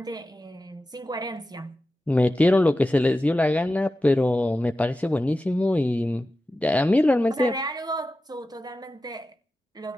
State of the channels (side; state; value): both; normal; correlation 0.93